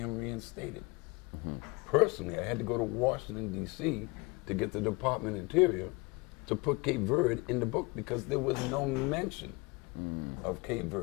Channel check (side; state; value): right; quieter; 26.8 dB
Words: reinstated. Personally, I had to go to Washington, D.C. to get the Department of Interior to put Cape Verde in the book because there was no mention of Cape